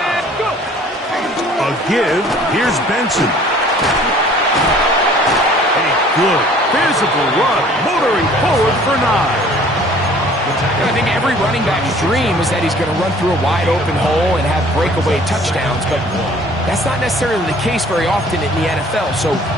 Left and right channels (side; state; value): both; normal; correlation 0.53